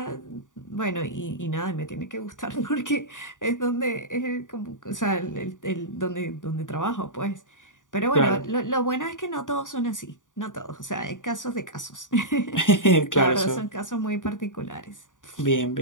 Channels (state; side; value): late; right; 0.87 ms